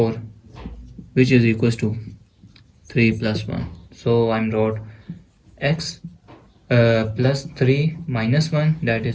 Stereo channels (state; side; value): identical; both; correlation 1.00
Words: which is equals to 3 plus 1. So I'm wrote x plus 3 minus 1 that